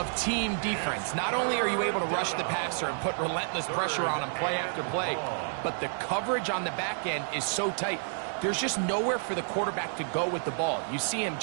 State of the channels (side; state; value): left; silent; digital silence